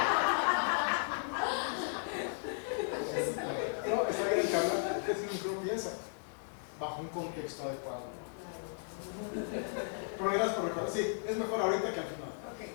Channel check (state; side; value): silent; right; digital silence